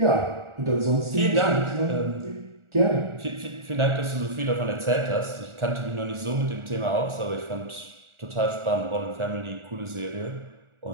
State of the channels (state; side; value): late; left; 1.4 ms